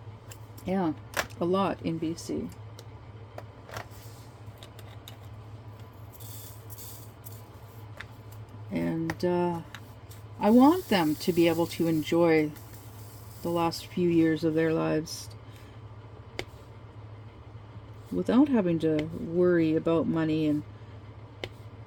Yeah, a lot in BC. And I want them to be able to enjoy the last few years of their lives without having to worry about money. And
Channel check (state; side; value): identical; both; correlation 1.00